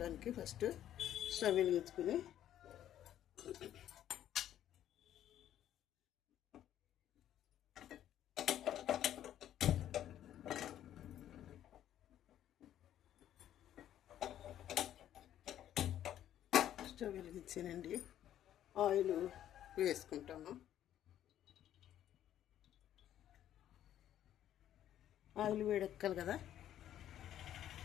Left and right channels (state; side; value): quieter; right; 11.4 dB